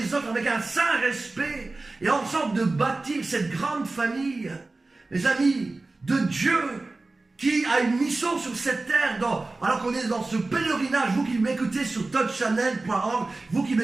autres, avec un saint respect, et ensemble de bâtir cette grande famille, mes amis, de Dieu, qui a une mission sur cette terre, alors qu'on est dans ce pèlerinage, vous qui m'écoutez sur touchchannel.org, vous qui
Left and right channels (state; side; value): quieter; left; 3.3 dB